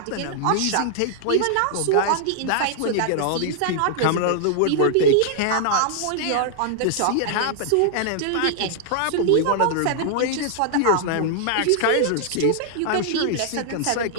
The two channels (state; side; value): different; both; correlation -0.01